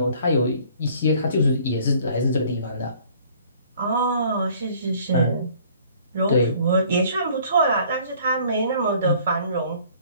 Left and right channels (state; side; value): inverted; both; correlation -0.56